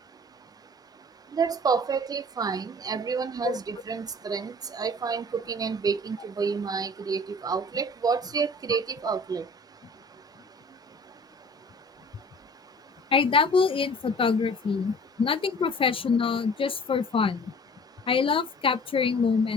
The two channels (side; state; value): both; normal; correlation 0.47